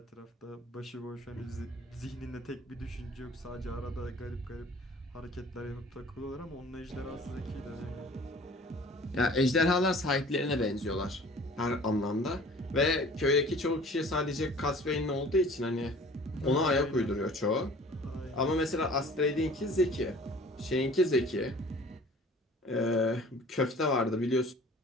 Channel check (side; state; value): both; normal; correlation 0.48